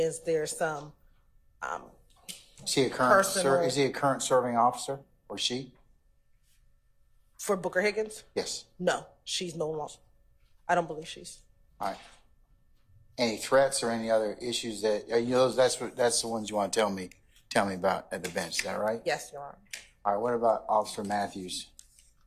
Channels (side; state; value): both; identical; correlation 1.00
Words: there's some is he a current serving officer, or she? For Booker Higgins? Yes. No, she's no longer. I don't believe she's. All right. Any threats or any other issues that that's the ones you want to tell me about at the bench? Is that right? Yes, Your Honor. All right. What about Officer Matthews?